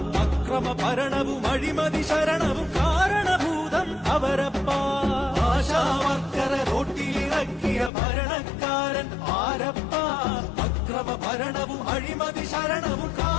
അക്രമ ഭരണവും അഴിമതി ശരണവും കാരണഭൂതം അവരപ്പ. ആശാവർക്കറെ റോട്ടിലിറക്കിയ ഭരണക്കാരൻ ആരപ്പ, അക്രമ ഭരണവും അഴിമതി ശരണവും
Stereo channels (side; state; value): right; drops out; at 7.9 s